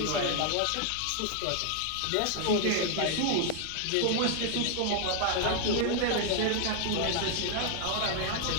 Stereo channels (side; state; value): both; different; correlation 0.00